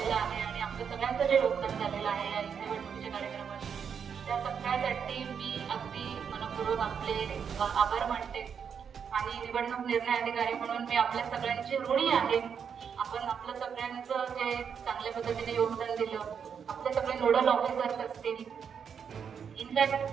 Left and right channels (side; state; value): left; quieter; 7.1 dB